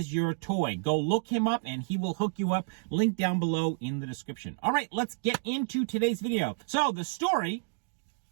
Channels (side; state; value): left; silent; digital silence